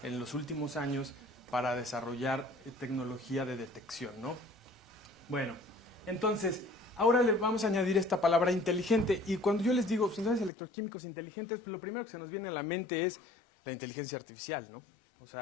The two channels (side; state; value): right; drops out; at 10.5 s